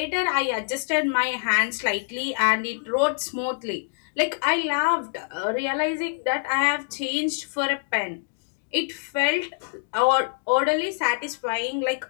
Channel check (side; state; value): right; silent; digital silence